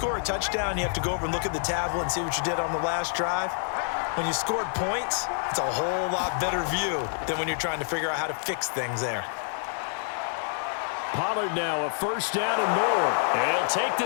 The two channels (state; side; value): silent; right; 60 dB below the other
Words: a touchdown, you have to go over and look at the tablet and see what you did on the last drive. When you scored points, it's a whole lot better view than when you're trying to figure out how to fix things there. Pollard now a first down and more. And he'll take